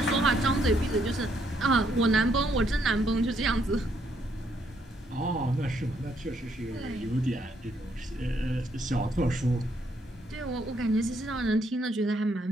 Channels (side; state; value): both; normal; correlation 0.72